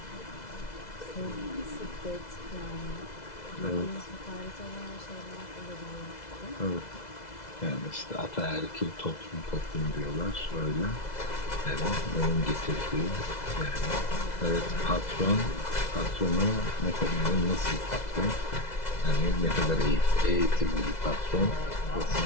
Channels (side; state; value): right; late; 2.0 ms